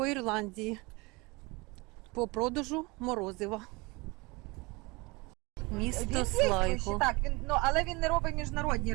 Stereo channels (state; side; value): quieter; left; 25.4 dB